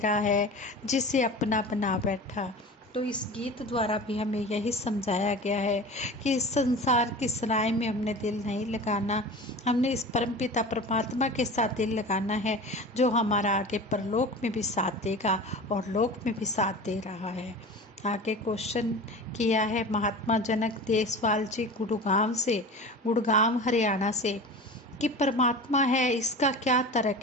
है जिसे अपना बना बैठा। तो इस गीत द्वारा भी हमें यही समझाया गया है कि इस संसार की सराय में हमने दिल नहीं लगाना, हमने इस परमपिता परमात्मा के साथ दिल लगाना है, जो हमारा आगे परलोक में भी साथ देगा और लोक में भी साथ दे रहा है। आगे क्वेश्चन किया है महात्मा जनक देसवाल जी गुड़गांव हरियाणा से कि परमात्मा है, इसका क्या तर्क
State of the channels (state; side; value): normal; both; correlation 0.34